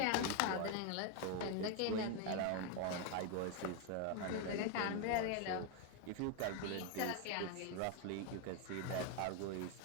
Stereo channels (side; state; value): both; different; correlation 0.01